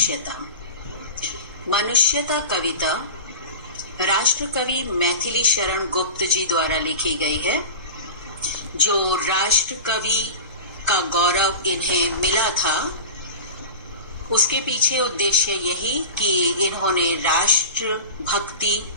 मनुष्यता कविता राष्ट्रकवि मैथिली शरण गुप्त जी द्वारा लिखी गई है। जो राष्ट्रकवि का गौरव इन्हें मिला था उसके पीछे उद्देश्य यही कि इन्होंने राष्ट्र भक्ति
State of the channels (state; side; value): inverted; both; correlation -0.32